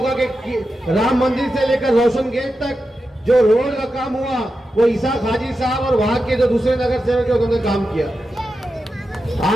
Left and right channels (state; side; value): normal; both; correlation 0.90